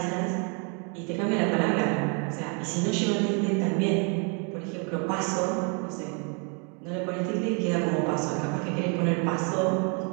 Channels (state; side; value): quieter; left; 34.8 dB